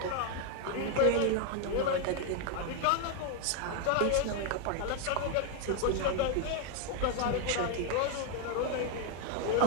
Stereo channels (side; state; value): both; different; correlation 0.01